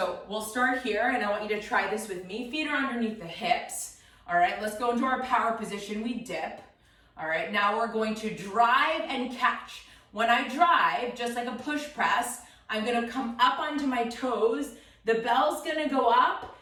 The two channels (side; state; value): both; identical; correlation 1.00